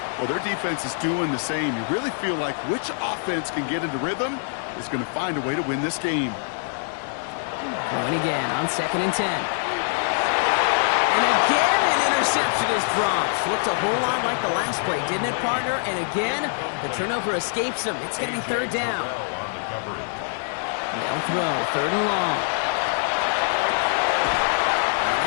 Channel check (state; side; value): silent; right; digital silence